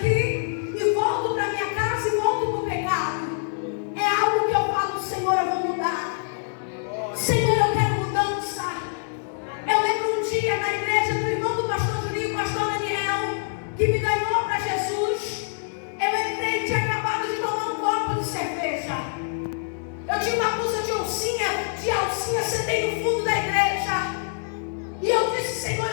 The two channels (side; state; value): right; silent; digital silence